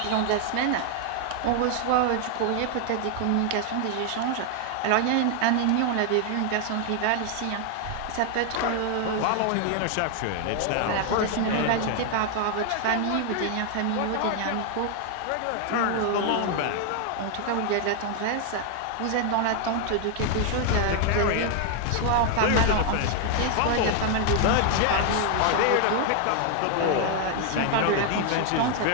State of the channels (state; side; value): different; both; correlation 0.00